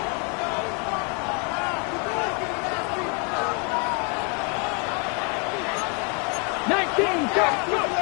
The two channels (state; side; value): quieter; right; 36.0 dB